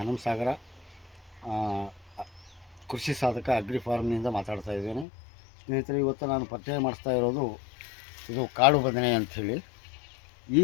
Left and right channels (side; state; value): right; drops out; at 5.1 s